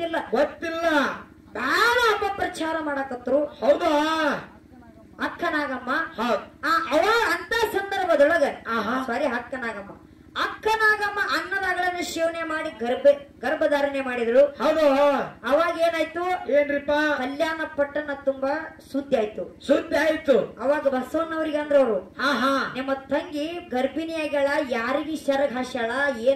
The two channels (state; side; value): identical; both; correlation 1.00